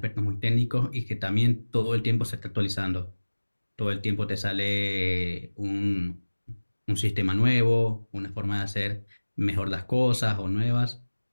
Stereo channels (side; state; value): both; inverted; correlation -1.00